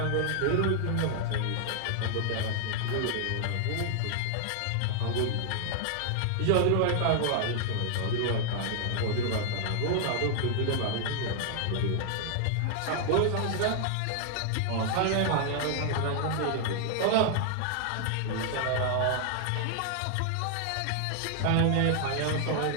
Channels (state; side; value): different; both; correlation 0.00